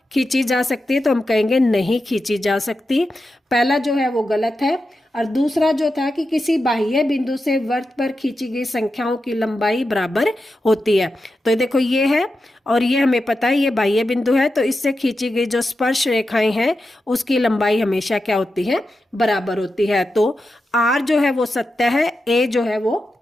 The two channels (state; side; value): normal; both; correlation 0.90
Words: खींची जा सकती है, तो हम कहेंगे नहीं खींची जा सकती। पहला जो है वो गलत है, और दूसरा जो था कि किसी बाह्य बिंदु से वृत्त पर खींची गई संख्याओं की लंबाई बराबर होती है। तो देखो ये है, और ये हमें पता है ये बाह्य बिंदु है, तो इससे खींची गई जो स्पर्श रेखाएं हैं उसकी लंबाई हमेशा क्या होती है बराबर होती है। तो आर जो है वो सत्य है, ए जो है वो